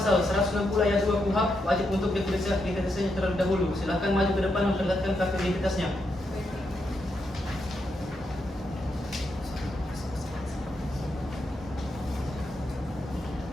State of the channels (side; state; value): both; normal; correlation 0.82